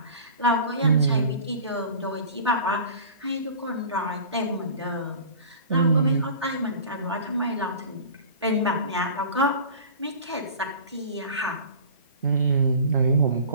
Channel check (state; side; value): inverted; both; correlation -0.40